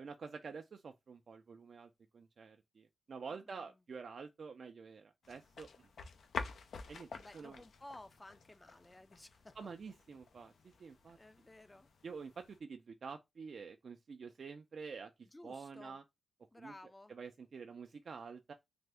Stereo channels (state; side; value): normal; both; correlation 0.83